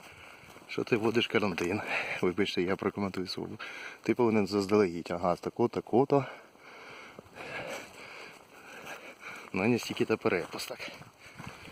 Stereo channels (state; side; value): identical; both; correlation 1.00